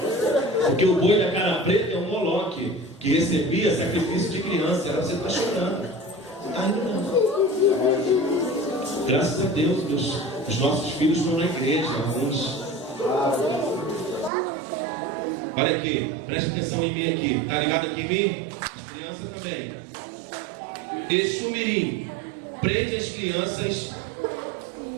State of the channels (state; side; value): drops out; left; at 14.3 s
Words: Porque o boi da cara preta é um Moloque que recebia sacrifício de criança. Era você tá chorando. Você tá rindo não. Graças a Deus, os nossos filhos estão na igreja, alguns. Olha aqui, preste atenção em mim aqui. Tá ligado aqui em mim? As crianças também. Exu Mirim prende as crianças